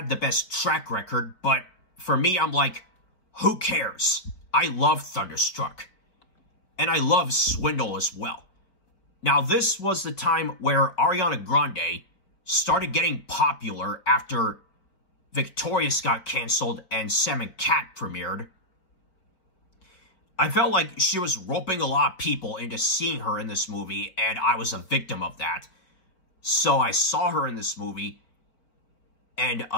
the best track record, but for me, I'm like, who cares? I love Thunderstruck. And I love Swindle as well. Now, this was the time where Ariana Grande started getting popular after Victorious got canceled and Sam and Cat premiered. I felt like she was roping a lot of people into seeing her in this movie, and I was a victim of that. So I saw her in this movie, and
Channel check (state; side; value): late; right; 4.2 ms